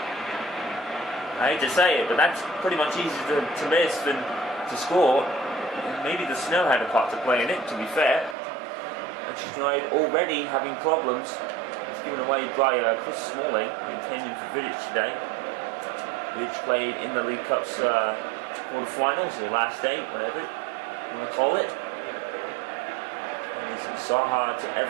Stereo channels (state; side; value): drops out; left; at 8.3 s